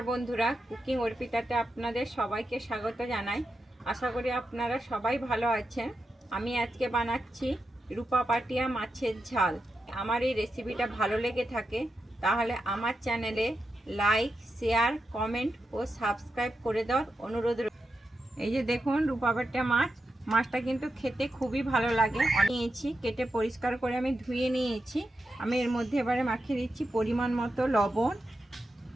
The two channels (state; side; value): normal; both; correlation 0.88